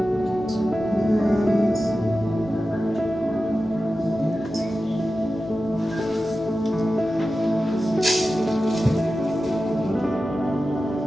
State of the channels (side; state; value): both; normal; correlation 0.93